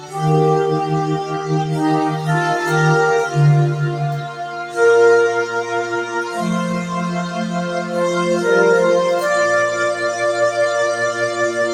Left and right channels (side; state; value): both; identical; correlation 1.00